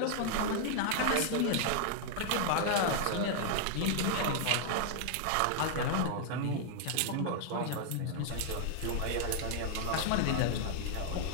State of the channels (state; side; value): different; both; correlation -0.01